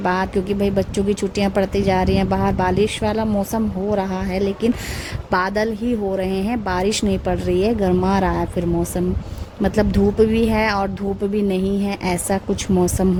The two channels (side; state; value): both; identical; correlation 1.00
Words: क्योंकि भाई बच्चों की छुट्टियाँ पड़ती जा रही हैं, बाहर बारिश वाला मौसम हो रहा है, लेकिन बादल ही हो रहे हैं, बारिश नहीं पड़ रही है। गर्मा रहा है फिर मौसम, मतलब धूप भी है और धूप भी नहीं है, ऐसा कुछ मौसम